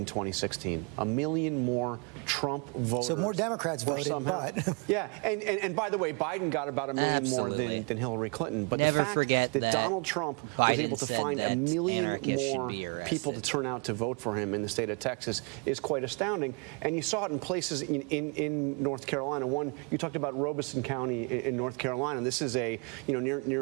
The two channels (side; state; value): left; quieter; 33.6 dB